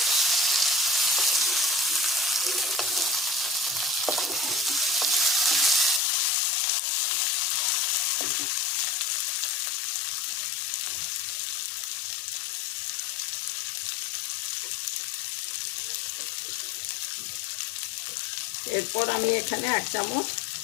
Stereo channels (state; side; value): drops out; right; at 6.0 s